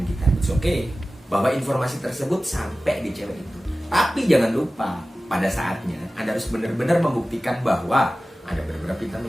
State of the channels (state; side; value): normal; both; correlation 0.96